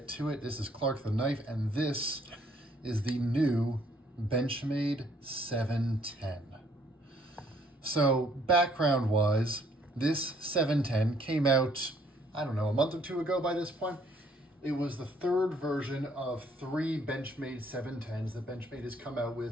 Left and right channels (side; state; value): both; normal; correlation 0.65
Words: to it. This is Clark the Knife, and this is the new Benchmade 710. So background-wise, this 710 came out, I don't know, a month or two ago by this point. It was the third version of 3 Benchmade 710s that Benchmade has come out